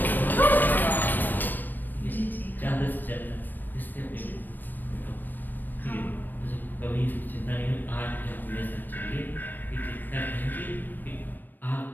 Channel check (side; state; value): right; late; 0.091 ms